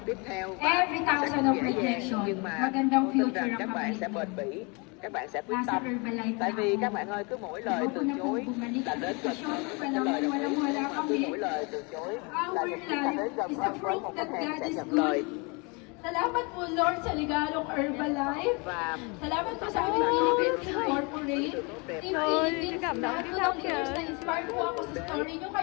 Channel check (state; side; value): quieter; right; 30.6 dB